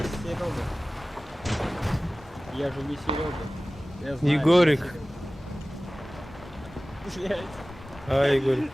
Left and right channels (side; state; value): both; normal; correlation 0.97